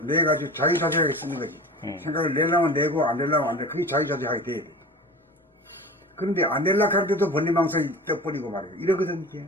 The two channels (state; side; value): normal; both; correlation 0.36